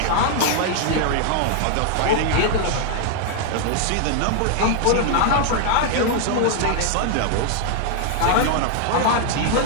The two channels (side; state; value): both; different; correlation 0.00